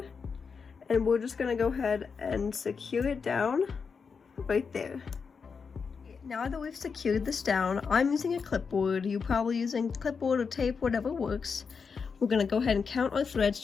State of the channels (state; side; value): quieter; right; 5.6 dB